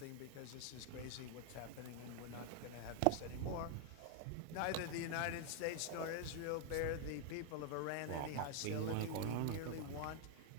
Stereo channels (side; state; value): both; different; correlation 0.00